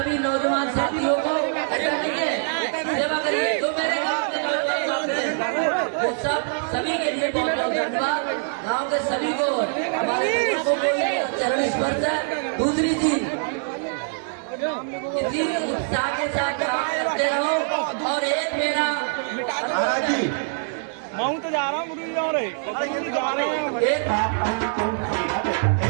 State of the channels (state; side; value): silent; left; digital silence